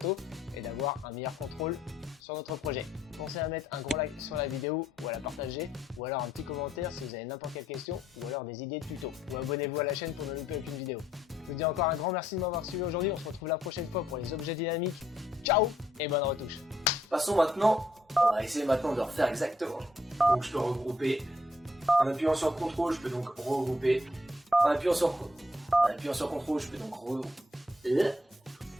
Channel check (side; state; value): both; normal; correlation 0.70